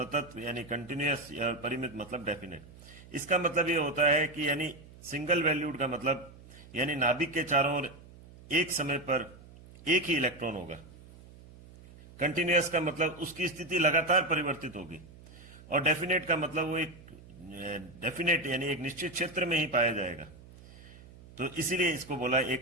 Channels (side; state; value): right; noise; hum, 20 dB below the sound